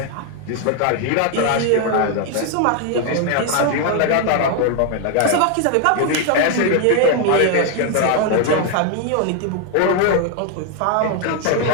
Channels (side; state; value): both; different; correlation 0.00